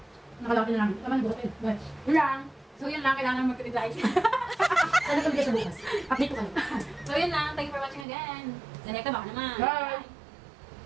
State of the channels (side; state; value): left; drops out; at 8.1 s